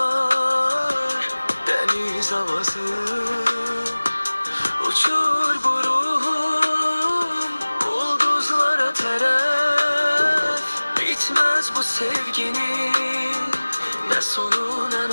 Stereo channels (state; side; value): inverted; both; correlation -1.00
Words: deniz havası. Uçur bu ruhum ulduzlara teref. Bitmez bu sevginin ne sonu ne